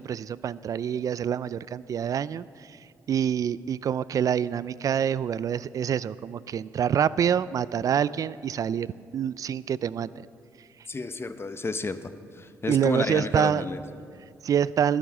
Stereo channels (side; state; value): left; quieter; 6.9 dB